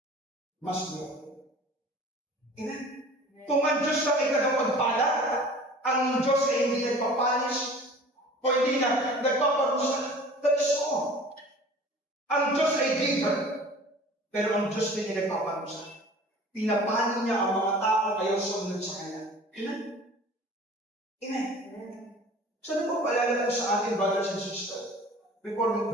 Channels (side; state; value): both; normal; correlation 0.44